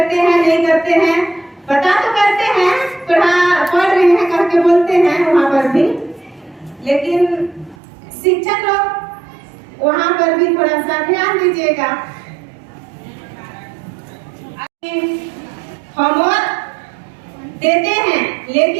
हैं नहीं करते हैं, पता तो करते हैं, पढ़ रहे हैं करके बोलते हैं वहाँ पर भी, लेकिन शिक्षक लोग वहाँ पर भी थोड़ा सा ध्यान दीजिएगा। होमवर्क देते हैं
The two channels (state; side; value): drops out; left; at 7.8 s